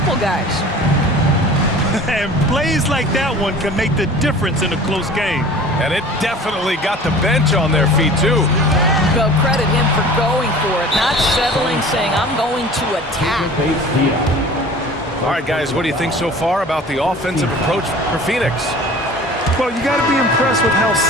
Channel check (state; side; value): normal; both; correlation 0.43